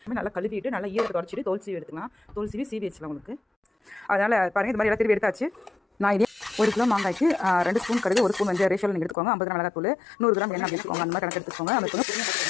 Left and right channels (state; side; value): drops out; right; at 9.2 s